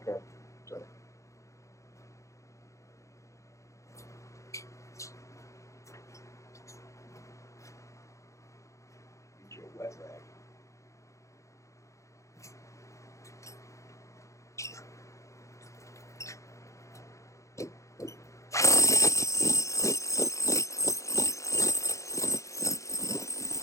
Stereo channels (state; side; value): late; right; 0.15 ms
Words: So. Get your wet rag.